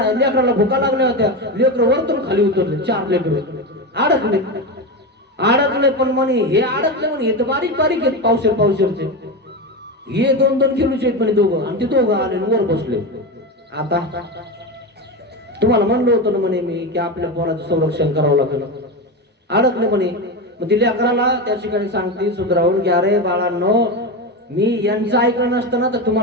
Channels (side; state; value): both; normal; correlation 0.18